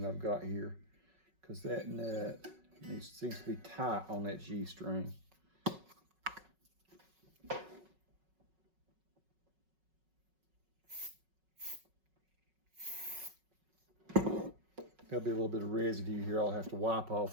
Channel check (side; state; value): left; late; 5.4 ms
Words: that I've got here, because that nut seems to be tight on that G string. There'll be a little bit of residue here I'll have to wipe